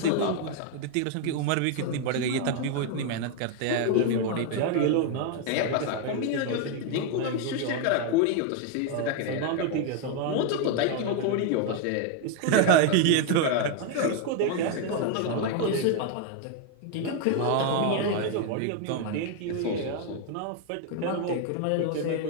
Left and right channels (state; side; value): different; both; correlation 0.01